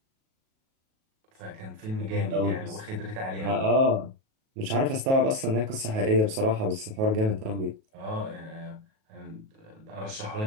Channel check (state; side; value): late; left; 37 ms